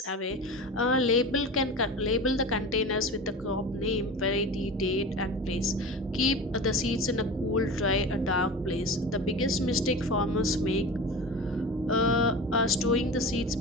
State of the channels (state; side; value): normal; both; correlation 0.31